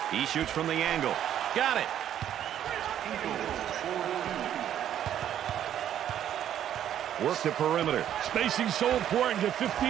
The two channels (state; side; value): quieter; left; 10.5 dB